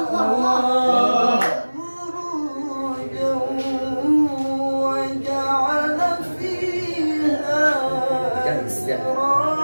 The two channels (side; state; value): both; inverted; correlation -1.00